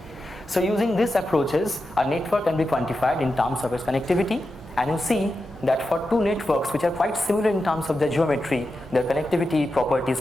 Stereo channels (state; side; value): normal; both; correlation 0.89